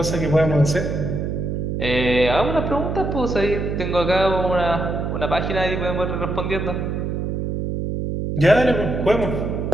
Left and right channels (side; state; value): right; noise; hum, 2 dB below the sound